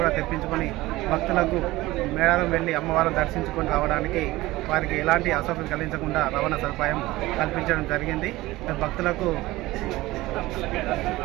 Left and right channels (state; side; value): quieter; left; 18.6 dB